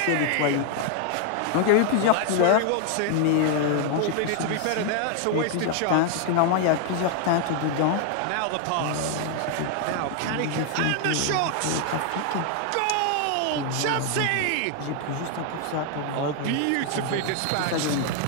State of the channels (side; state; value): both; different; correlation 0.00